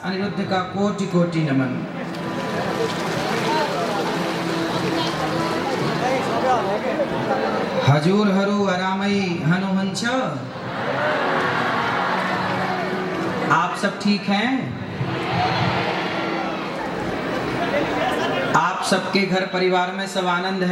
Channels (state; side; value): identical; both; correlation 1.00